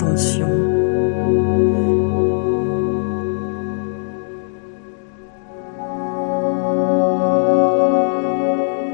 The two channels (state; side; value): silent; right; digital silence